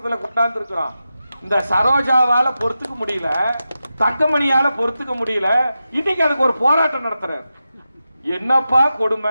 கொண்டாந்து இருக்கிறோம். இந்த சரோஜாவால பொறுத்துக்க முடியல, தங்கமணியால பொறுத்துக்க முடியல. இன்னைக்கு அதுக்கு ஒரு போராட்டம் நடத்துறாரு. என்னப்பா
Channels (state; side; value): inverted; both; correlation -0.91